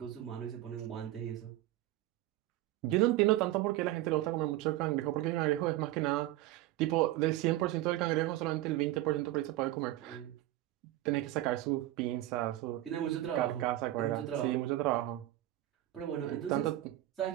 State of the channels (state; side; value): quieter; left; 15.6 dB